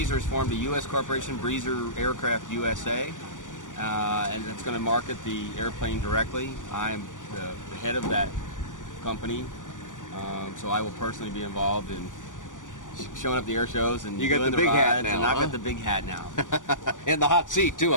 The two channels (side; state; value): right; late; 0.87 ms